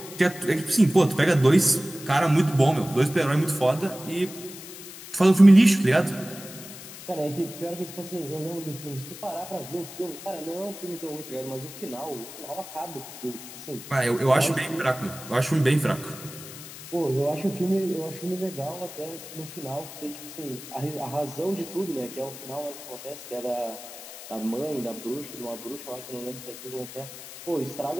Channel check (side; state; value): left; noise; hiss, 14 dB below the sound